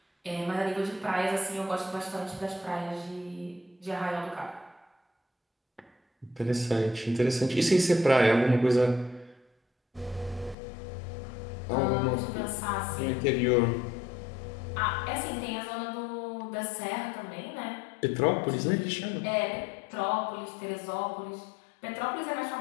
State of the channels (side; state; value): right; drops out; at 10.6 s